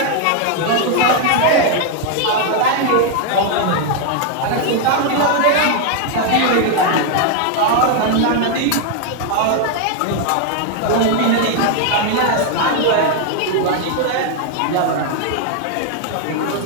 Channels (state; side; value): different; both; correlation 0.00